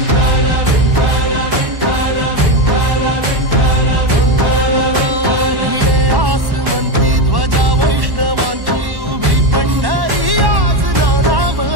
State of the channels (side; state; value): left; late; 1.1 ms